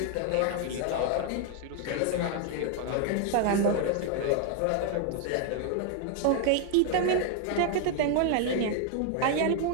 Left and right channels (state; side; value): different; both; correlation 0.01